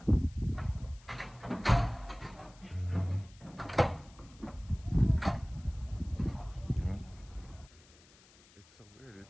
It's so weird.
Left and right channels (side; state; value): left; noise; hiss, 26 dB below the sound